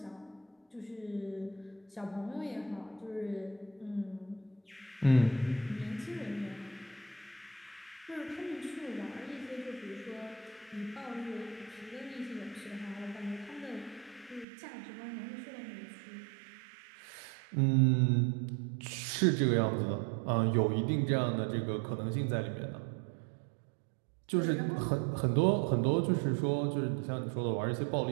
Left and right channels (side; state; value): left; drops out; at 14.5 s